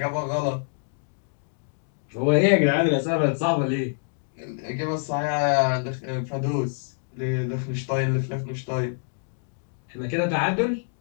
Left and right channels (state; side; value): silent; right; digital silence